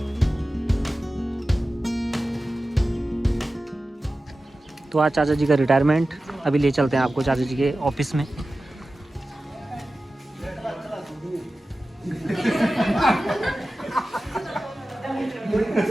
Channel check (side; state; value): both; normal; correlation 0.95